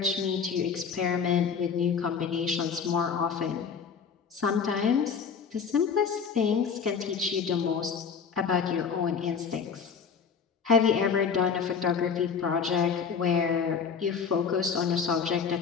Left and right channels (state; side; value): quieter; right; 6.3 dB